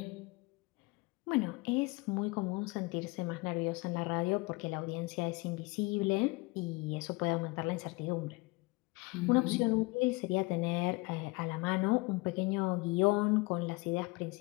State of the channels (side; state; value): right; quieter; 25.3 dB